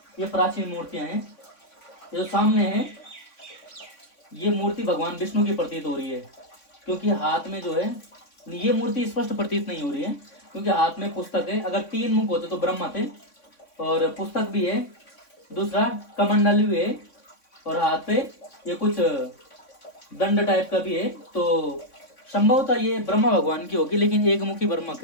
ये प्राचीन मूर्तियां हैं। ये जो सामने है ये मूर्ति भगवान विष्णु की प्रतीत हो रही है, क्योंकि हाथ में जो है ये मूर्ति स्पष्ट प्रतीत नहीं हो रही है, क्योंकि हाथ में पुस्तक है। अगर 3 मुख होते तो ब्रह्मा थे, और पुस्तक भी है, दूसरा कमंडल भी है, और हाथ पे ये कुछ दंड टाइप का भी है। तो संभवतः ये ब्रह्मा भगवान की होगी, लेकिन एक मुखी ब्रह्मा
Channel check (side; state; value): right; late; 3.6 ms